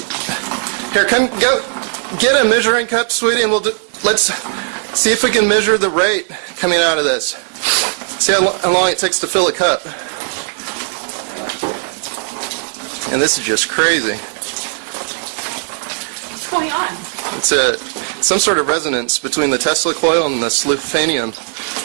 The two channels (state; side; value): silent; left; digital silence